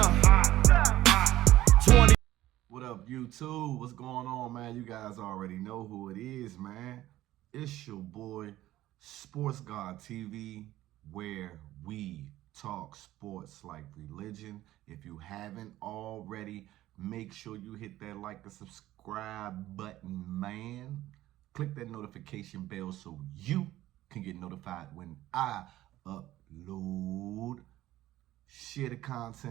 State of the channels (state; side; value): quieter; left; 15.0 dB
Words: 20. What up, YouTube? What's going on, man? You guys already know who it is, man. It's your boy, Sports God TV, where we talk sports like religion. If you haven't already, make sure you hit that like and subscribe button, man. Click that notification bell so you can get notified when I upload. Share the